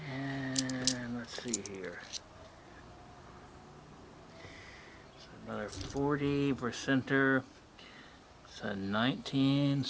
And let's see here. So another 40%er. It's a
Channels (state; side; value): identical; both; correlation 1.00